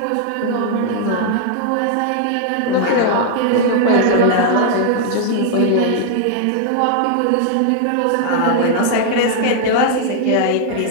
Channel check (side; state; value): both; different; correlation 0.00